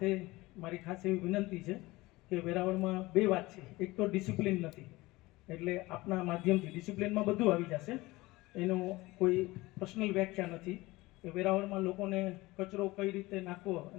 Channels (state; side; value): quieter; right; 20.4 dB